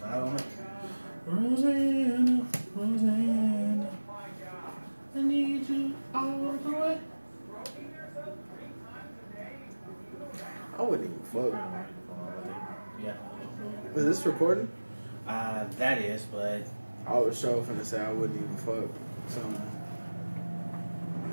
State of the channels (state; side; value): inverted; both; correlation -1.00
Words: I don't know. Rosanna, Rosanna. I need you all the way. I wouldn't even fuck. Yeah. Is this recording? That is, but I was sure finna say I wouldn't even fuck something.